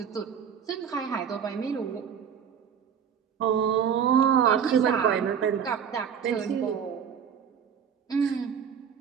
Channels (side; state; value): left; quieter; 7.8 dB